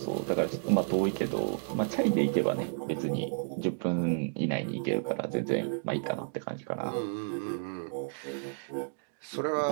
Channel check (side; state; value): left; silent; digital silence